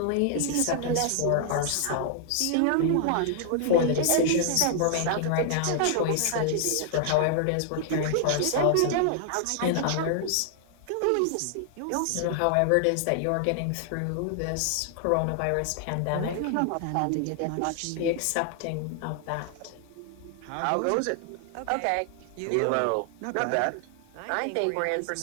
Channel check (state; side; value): different; both; correlation 0.00